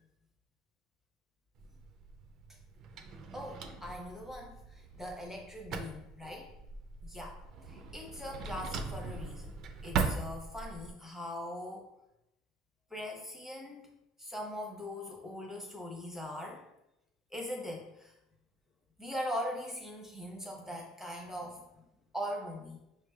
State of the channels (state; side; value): normal; both; correlation 0.57